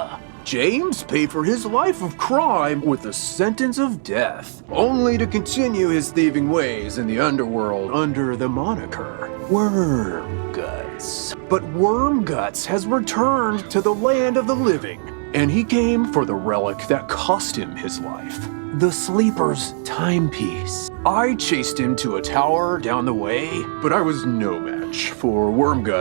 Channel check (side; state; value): left; silent; 65 dB below the other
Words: James paid for his life of crime with a sentence of death, only to continue his thieving ways in the underworld under the moniker Wormguts. But Wormguts has returned to the land of the living, and he came for the relic that cost him his life. The Sleeper's timepiece. I chased him to a tower down the way, but I was no match for